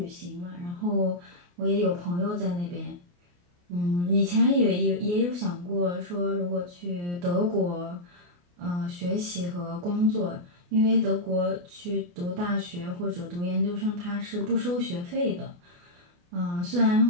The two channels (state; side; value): late; left; 28 ms